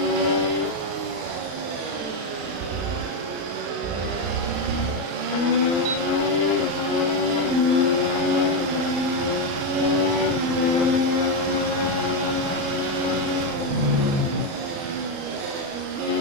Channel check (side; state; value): left; late; 35 ms